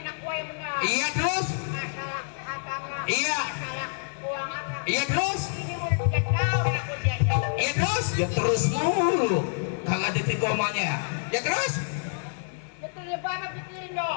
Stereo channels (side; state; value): right; silent; 58 dB below the other